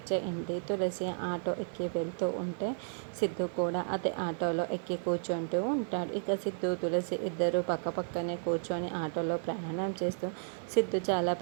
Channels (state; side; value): silent; left; 56 dB below the other